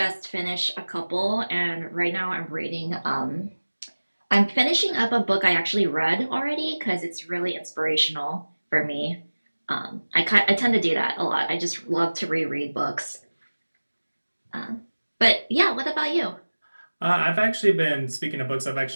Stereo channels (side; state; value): both; inverted; correlation -1.00